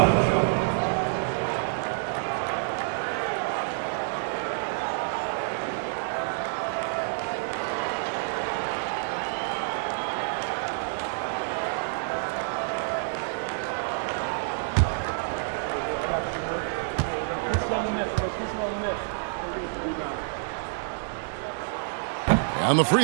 On the free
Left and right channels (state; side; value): silent; left; digital silence